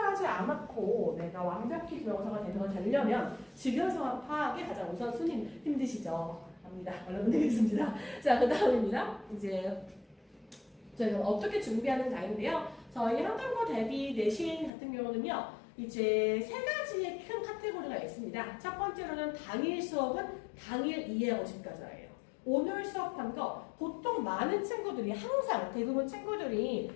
않았고 내가 완벽히 기말고사가 되려면 지금 상황 파악이 가장 우선순위 힘드시죠? 합니다. 얼른 드리겠습니다. 자, 그 다음입니다. 이제 저희가 어떻게 준비하는 자인데요. 저희 한국어 대비 내신 같은 경우는요. 이제 3가지의 큰 카테고리가 있습니다. 첫 번째로는 당일 수업은 당일 이해하고 집가자예요. 오늘 수업한 거 보통 많은 친구들이 항상 대부분 친구들이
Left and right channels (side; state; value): right; drops out; at 14.7 s